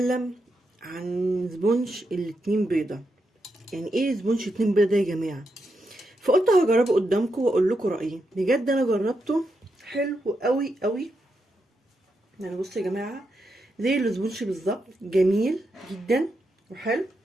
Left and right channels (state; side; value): normal; both; correlation 0.84